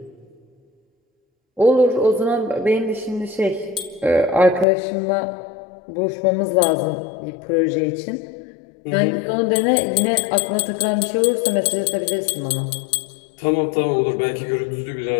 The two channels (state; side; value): drops out; right; at 4.7 s